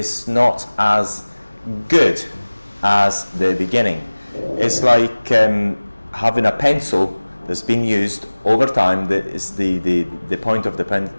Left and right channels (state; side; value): inverted; both; correlation -1.00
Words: not as good as the beginning. It's like having a pencil that's been used over time. The point of the